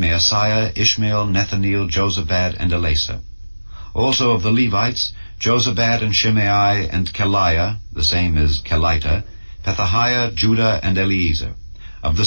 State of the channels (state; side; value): inverted; both; correlation -1.00